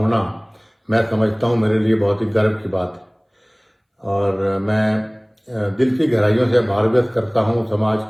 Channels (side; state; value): both; identical; correlation 1.00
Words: मैं समझता हूं मेरे लिए बहुत ही गर्व की बात है। और मैं दिल की गहराइयों से आभार व्यक्त करता हूँ समाज